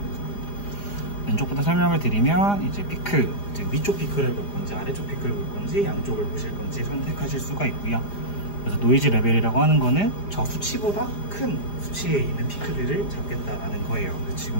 왼쪽부터 설명을 드리면 이제 피크, 이제 위쪽 피크를 볼 건지 아래쪽 피크를 볼 건지 양쪽을 보실 건지 선택하실 수가 있고요. 그래서 노이즈 레벨이라고 하는 거는 저 수치보다 큰 수치에 있는 피크들을 잡겠다라는 거예요.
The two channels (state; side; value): late; right; 4.9 ms